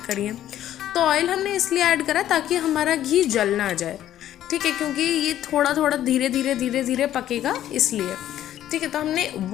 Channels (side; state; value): right; quieter; 12.1 dB